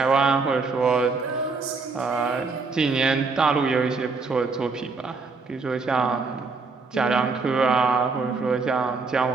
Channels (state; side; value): quieter; left; 4.2 dB